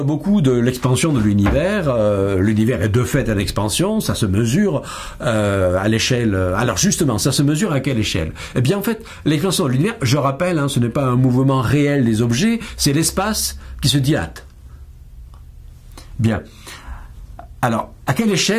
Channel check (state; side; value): identical; both; correlation 1.00